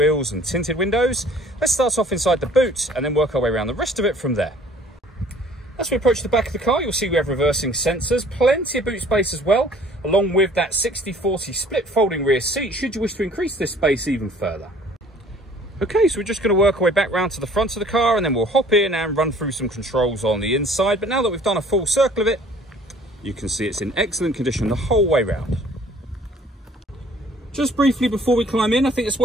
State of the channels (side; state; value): both; normal; correlation 0.54